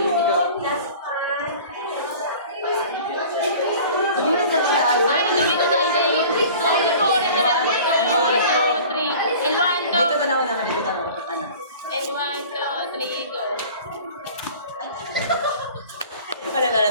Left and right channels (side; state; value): both; inverted; correlation -0.44